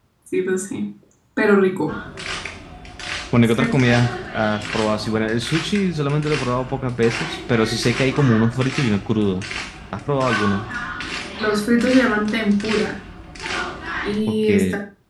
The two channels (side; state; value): both; identical; correlation 1.00